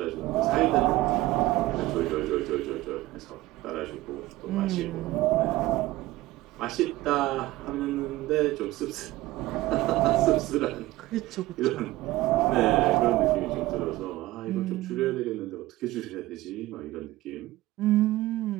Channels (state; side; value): quieter; left; 17.7 dB